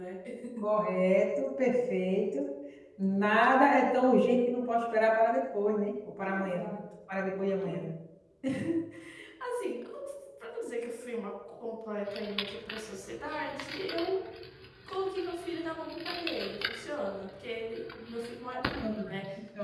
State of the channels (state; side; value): identical; both; correlation 1.00